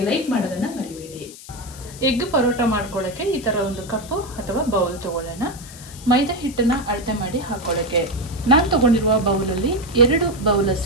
ಲೈಕ್ ಮಾಡೋದನ್ನು ಮರಿಬೇಡಿ. ಎಗ್ ಪರೋಟ ಮಾಡ್ಕೊಳ್ಳೋಕ್ಕೆ ಈ ಥರ ಒಂದು ಕಪ್ಪು ಅಥವಾ ಬೌಲ್ ತೊಗೊಳ್ಳೋಣ. ಮೈದಾ ಹಿಟ್ಟನ್ನು ಅಳತೆ ಮಾಡಿ ಹಾಕೊಳ್ಳೋಕ್ಕೆ ನಾನು ತೊಗೊಂಡಿರುವ ಬೌಲಲ್ಲಿ 2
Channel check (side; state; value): left; noise; hiss, 17 dB below the sound